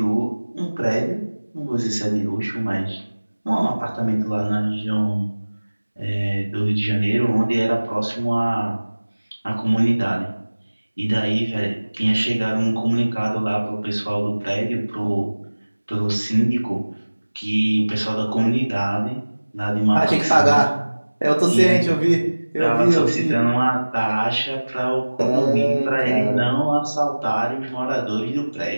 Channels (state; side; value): inverted; both; correlation -1.00